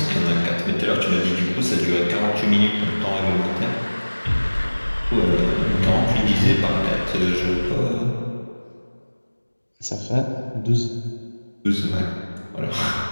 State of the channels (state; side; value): inverted; both; correlation -1.00